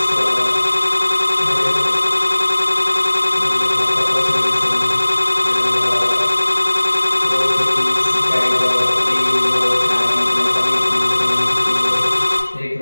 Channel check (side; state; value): both; inverted; correlation -1.00